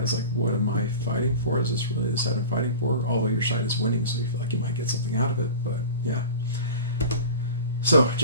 like, what am I fighting for? Is this really the side I'm fighting for? Although your side is winning, so you feel like you might get something out of it. But yeah. So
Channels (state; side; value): inverted; both; correlation -0.36